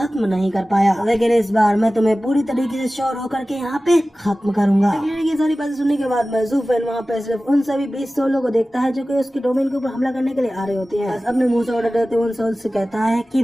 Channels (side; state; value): both; normal; correlation 0.96